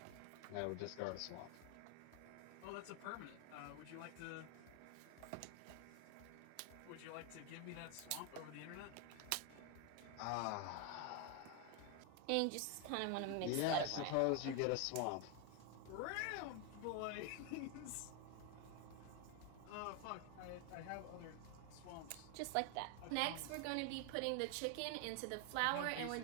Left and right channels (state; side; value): different; both; correlation 0.01